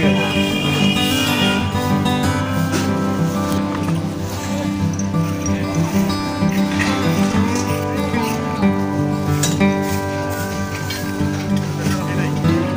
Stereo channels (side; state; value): both; identical; correlation 1.00